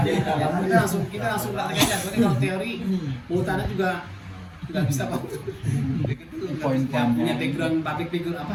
kita langsung praktek aja. Soalnya kalau teori mutannya juga nggak bisa kok. Poin punya background public figure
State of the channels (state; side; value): identical; both; correlation 1.00